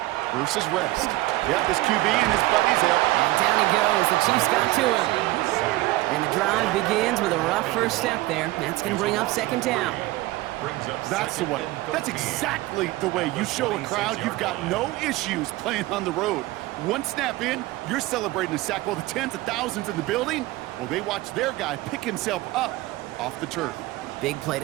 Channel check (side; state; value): left; quieter; 18.6 dB